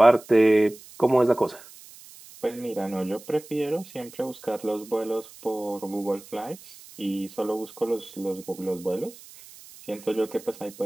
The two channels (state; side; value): noise; right; hiss, 20 dB below the sound